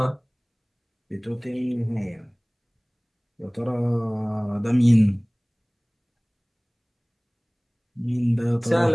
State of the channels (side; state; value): both; identical; correlation 1.00